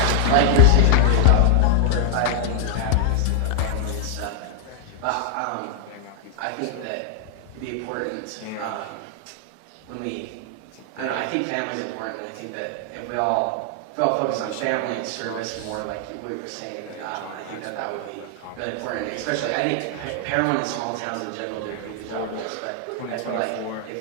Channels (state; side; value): different; both; correlation 0.00